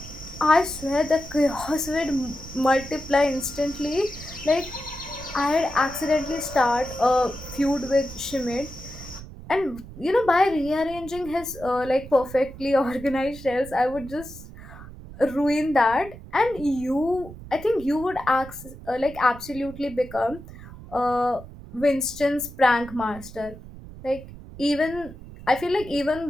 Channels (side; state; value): right; noise; rumble, 15 dB below the sound